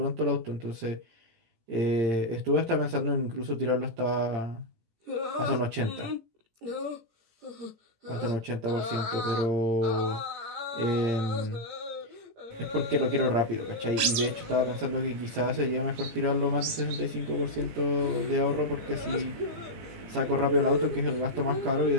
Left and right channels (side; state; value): left; late; 18 ms